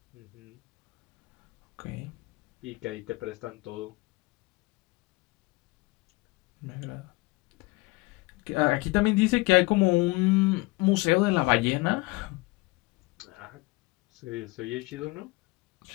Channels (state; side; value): quieter; right; 23.5 dB